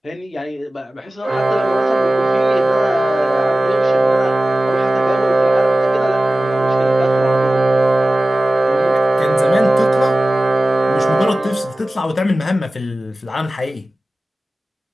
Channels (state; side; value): normal; both; correlation 0.96